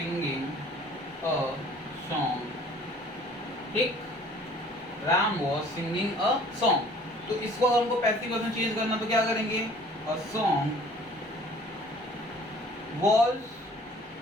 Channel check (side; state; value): both; normal; correlation 0.52